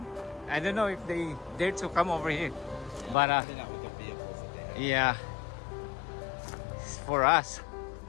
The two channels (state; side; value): drops out; right; at 3.2 s